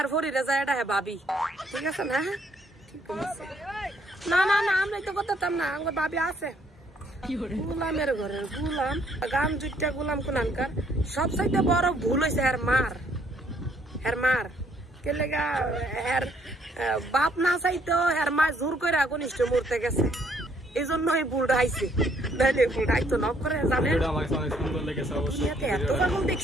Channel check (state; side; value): normal; both; correlation 0.67